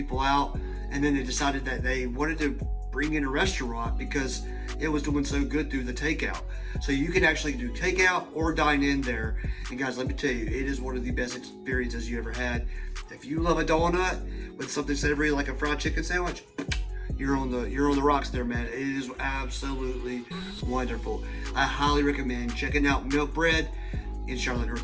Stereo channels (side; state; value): both; identical; correlation 1.00